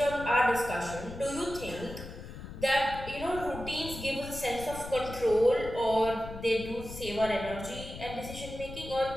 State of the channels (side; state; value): left; noise; rumble, 11 dB below the sound